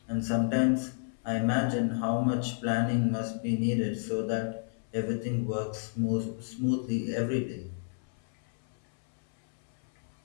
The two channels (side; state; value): right; silent; 57 dB below the other